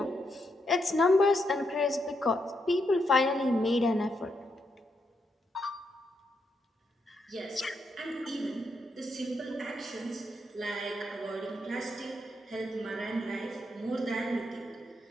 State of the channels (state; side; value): normal; both; correlation 0.80